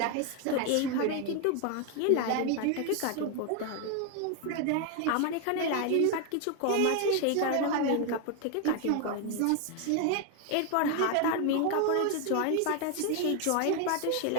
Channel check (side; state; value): both; different; correlation 0.01